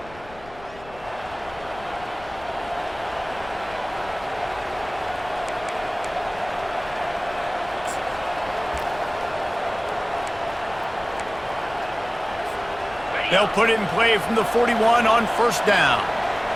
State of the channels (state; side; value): noise; left; rumble, 20 dB below the sound